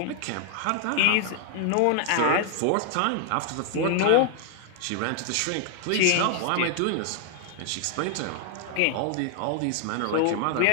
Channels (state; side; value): different; both; correlation 0.00